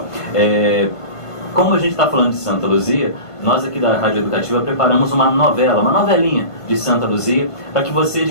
Como a gente está falando de Santa Luzia, nós aqui da Rádio Educativa preparamos uma novelinha de Santa Luzia, para que você de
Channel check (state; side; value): late; right; 1.5 ms